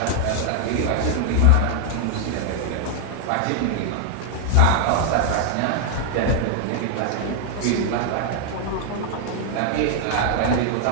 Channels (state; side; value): different; both; correlation 0.00